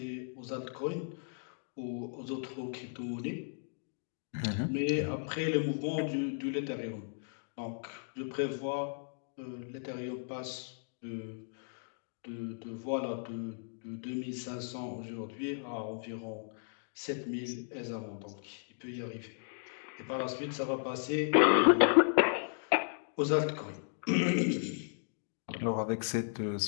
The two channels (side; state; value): right; silent; digital silence